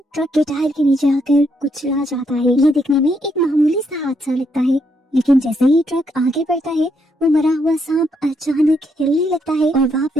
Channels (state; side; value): normal; both; correlation 0.76